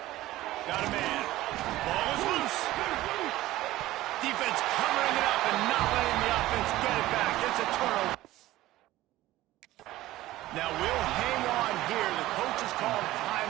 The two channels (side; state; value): left; quieter; 16.2 dB